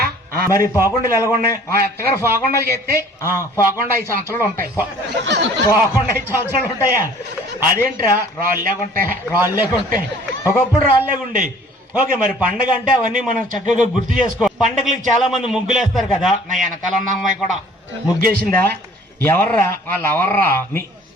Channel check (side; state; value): both; normal; correlation 0.52